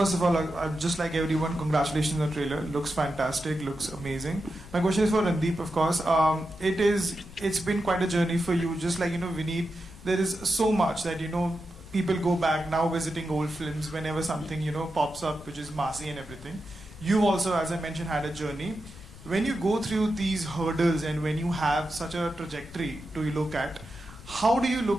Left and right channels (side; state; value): left; noise; rumble, 18 dB below the sound